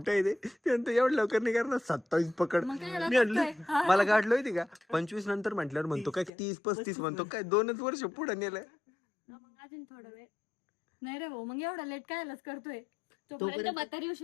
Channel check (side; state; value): right; drops out; at 6.3 s